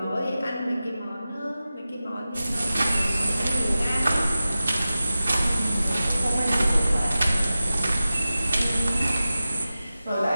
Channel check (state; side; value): inverted; both; correlation -0.95